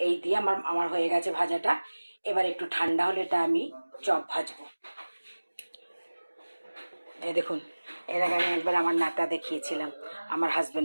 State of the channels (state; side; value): inverted; both; correlation -1.00